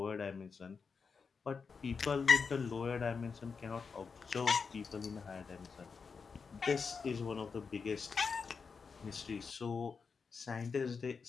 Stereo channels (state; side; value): quieter; right; 5.4 dB